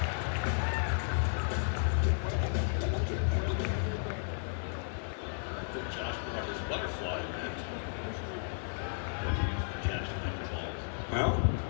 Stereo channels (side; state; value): right; silent; 55 dB below the other